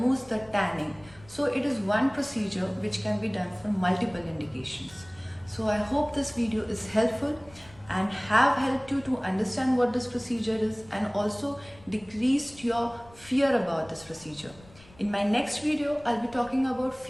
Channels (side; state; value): left; noise; rumble, 24 dB below the sound